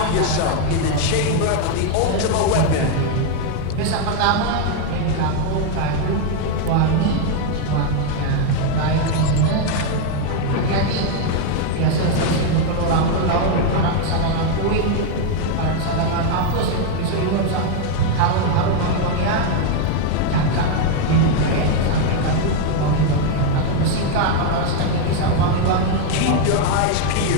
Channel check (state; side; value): different; both; correlation 0.01